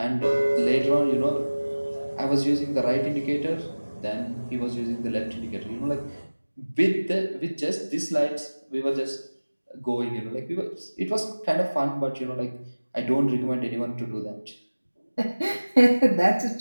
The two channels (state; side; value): inverted; both; correlation -1.00